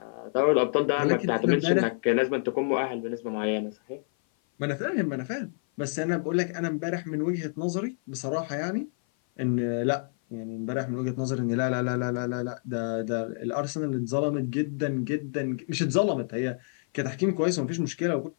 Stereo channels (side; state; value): right; silent; 56 dB below the other